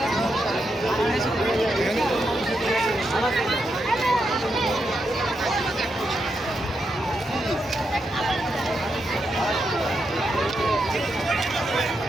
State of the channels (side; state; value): both; normal; correlation 0.83